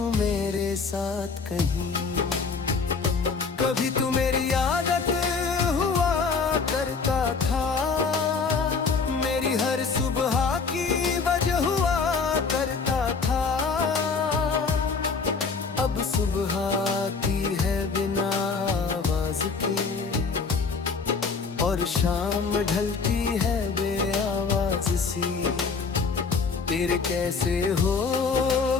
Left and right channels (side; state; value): right; quieter; 4.9 dB